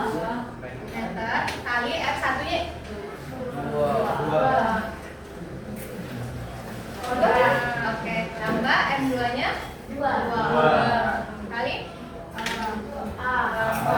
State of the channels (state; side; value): identical; both; correlation 1.00